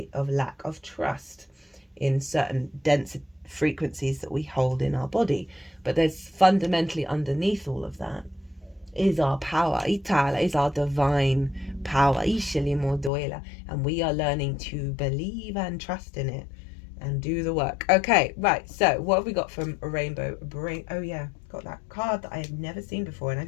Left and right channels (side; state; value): right; drops out; at 13.1 s